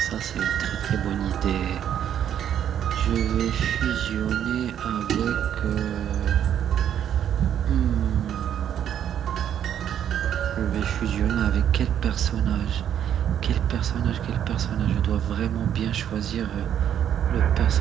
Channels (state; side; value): quieter; left; 9.8 dB